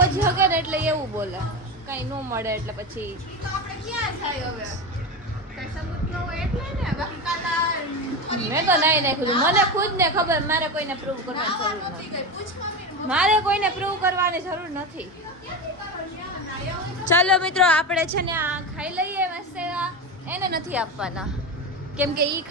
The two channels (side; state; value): both; normal; correlation 0.20